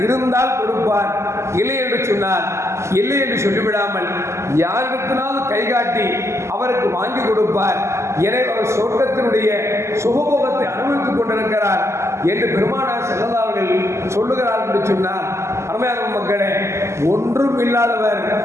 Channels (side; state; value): left; late; 0.13 ms